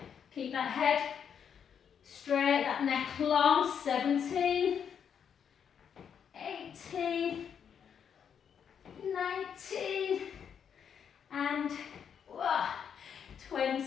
Keep that head straight, that neck long. 17. 18. 19. And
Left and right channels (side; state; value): right; quieter; 7.7 dB